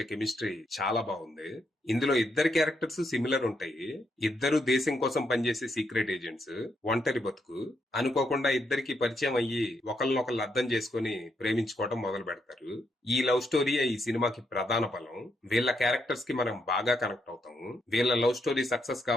కెమిస్ట్రీ చాలా బాగుంది. ఇందులో ఇద్దరు క్యారెక్టర్స్ సిమిలర్ ఉంటాయి. ఇద్దరు దేశం కోసం పనిచేసే సీక్రెట్ ఏజెంట్స్. ఒంటరి బతుకు. అనుకోకుండా ఇద్దరికి పరిచయం అయ్యి ఒకళ్ళనొకళ్ళు అర్థం చేసుకుని ప్రేమించుకోవడం మొదలు పెడతారు. ఈ లవ్ స్టోరీయే ఈ సినిమాకి ప్రధాన బలం. వీళ్ళ క్యారెక్టర్స్ కి మనం బాగా కనెక్ట్ అవుతాము. వీళ్ళ లవ్ స్టోరీ సక్సెస్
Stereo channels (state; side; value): normal; both; correlation 0.78